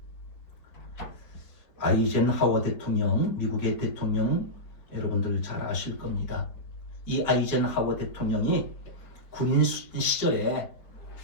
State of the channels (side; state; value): right; late; 4.5 ms